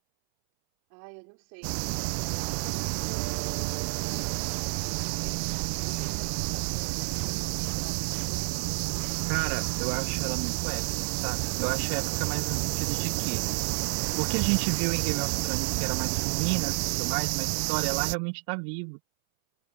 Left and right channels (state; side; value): silent; left; 58 dB below the other